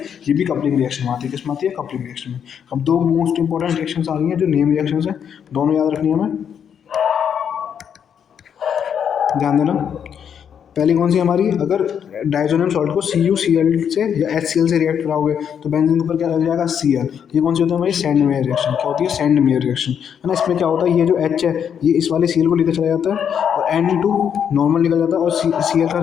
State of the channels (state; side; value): quieter; right; 8.1 dB